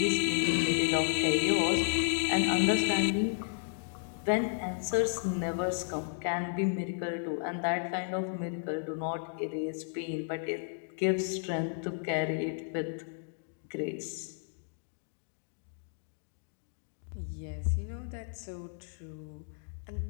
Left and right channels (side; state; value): right; silent; digital silence